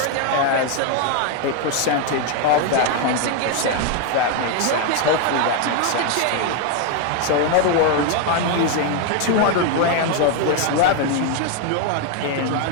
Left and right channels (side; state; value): both; different; correlation 0.01